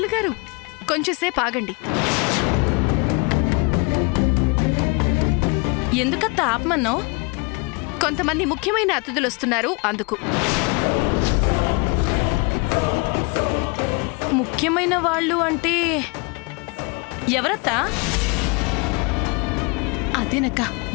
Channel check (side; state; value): right; quieter; 30.6 dB